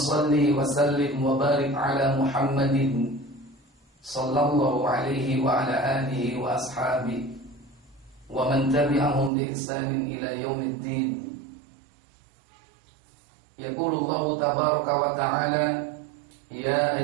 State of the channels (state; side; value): drops out; left; at 9.3 s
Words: wa sallim wa barik ala Muhammadin sallallahu alaihi wa ala alihi wa ashabihi wa man tabi'ahum bi ihsanin ila yaumiddin. Yaqulu Allah tabaraka wa ta'ala, ya